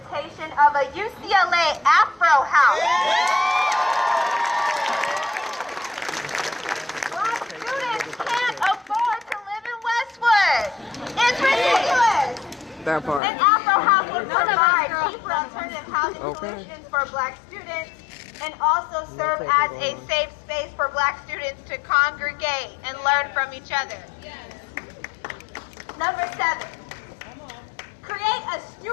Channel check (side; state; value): right; drops out; at 13.2 s